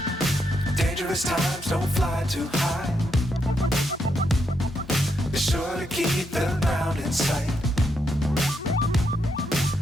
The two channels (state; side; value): normal; both; correlation 0.79